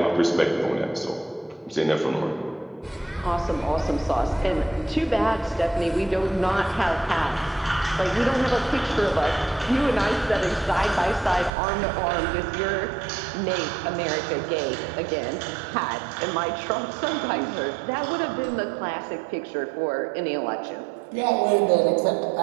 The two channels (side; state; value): left; drops out; at 11.5 s